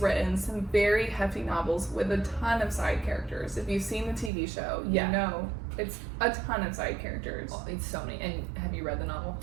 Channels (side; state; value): left; drops out; at 4.3 s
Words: written some very hefty novels with a ton of side characters. If you've seen the TV show, you know it's a ton of side characters. Oh, it's so many. And have you read the novel?